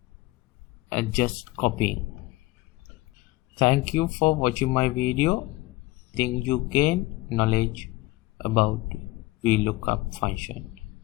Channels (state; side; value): quieter; right; 19.4 dB